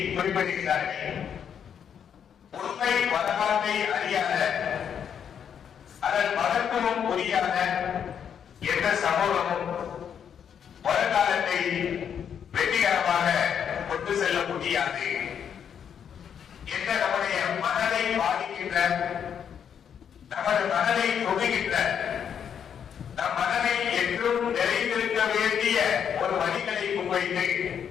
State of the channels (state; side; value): quieter; right; 8.1 dB